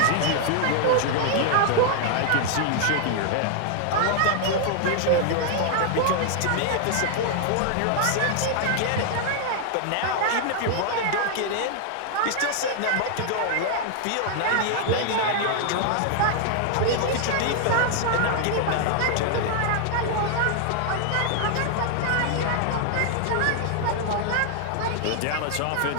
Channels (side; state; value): both; different; correlation 0.00